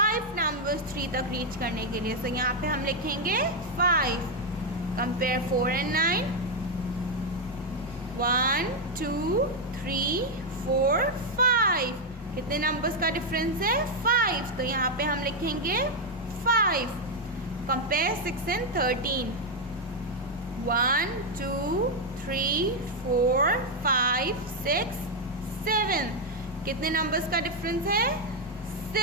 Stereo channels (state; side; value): normal; both; correlation 0.01